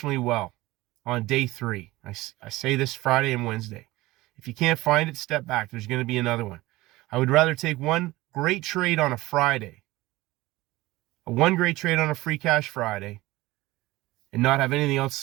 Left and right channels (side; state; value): left; quieter; 19.0 dB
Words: well on day 3. I say this Friday and Wednesday. If you can't find it, step back. There's going to be another one. I would rather take one great trade on a Friday, one great trade on a Free Cash Friday, and not have anything